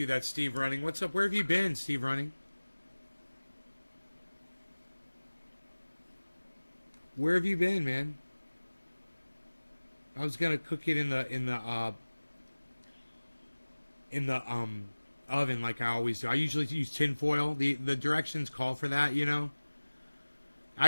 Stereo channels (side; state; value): both; inverted; correlation -1.00